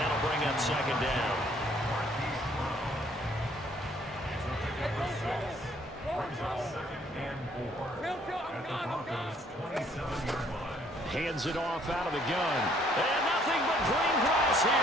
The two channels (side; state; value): both; normal; correlation 0.63